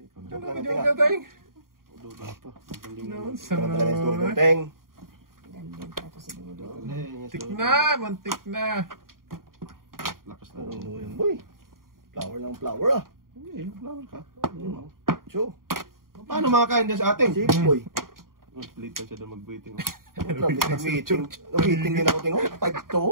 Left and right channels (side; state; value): left; late; 0.91 ms